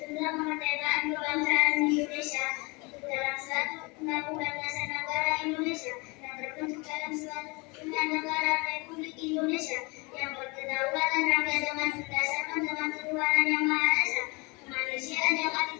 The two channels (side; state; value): right; quieter; 27.5 dB